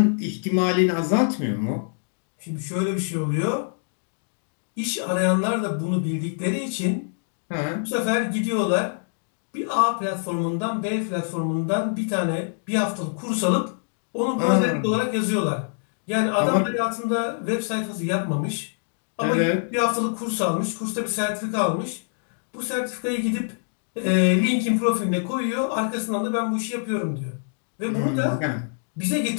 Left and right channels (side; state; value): right; silent; digital silence